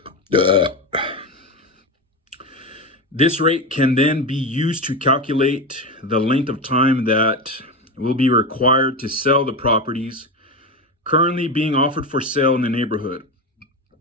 This rate can then be used to calculate the length of time that will be required to sell the properties currently being offered for sale in the neighborhood.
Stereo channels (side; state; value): both; normal; correlation 0.18